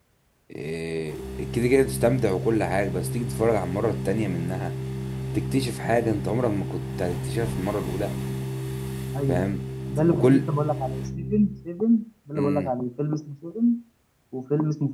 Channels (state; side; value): identical; both; correlation 1.00